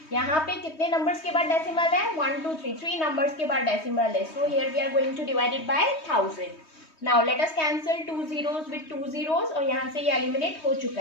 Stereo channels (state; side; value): late; right; 3.2 ms